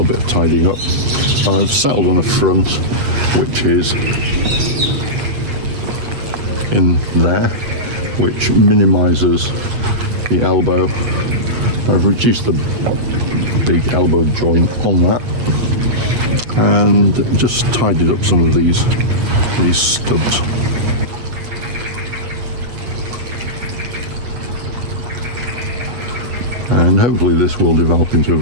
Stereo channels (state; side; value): late; left; 8.5 ms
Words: bit of tidying up. I've settled on a front, which is in there, which minimises the elbow. I've reduced the big elbow joint on that and just tidied up some of these stubs. And hopefully this will develop into a